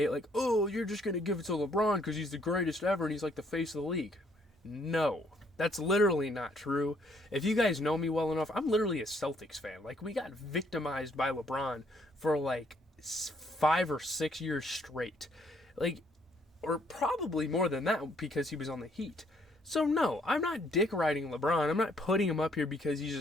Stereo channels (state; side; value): normal; both; correlation 0.67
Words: oh, you're just going to give it to LeBron because he's the greatest ever and he's the face of the league. No, that's literally not true. If you guys know me well enough, I'm literally a Celtics fan. We got victimized by LeBron for 5 or 6 years straight. Or probably more than that because he was on the Heat. So no, I'm not dick riding LeBron. I'm not putting him up here because he's